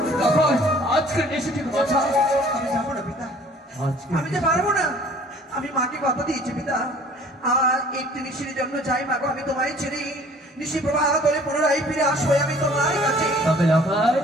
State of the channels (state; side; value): normal; both; correlation 0.52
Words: আজকের নিশি ঠিক বাঁচা। আমি যাবো না পিতা, আমি যে পারবো না। আমি মাকে কথা দিয়েছি পিতা, আর একটি নিশির জন্য যাই মা গো, আমি তোমায় ছেড়ে নিশি প্রবাহ করে পুনরায় ফিরে আসবো আমি তোমার কাছে। তবে লগাই